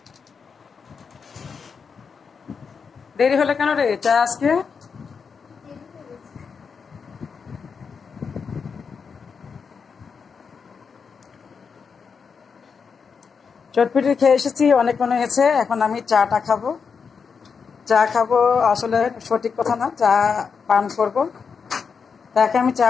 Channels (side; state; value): right; quieter; 5.8 dB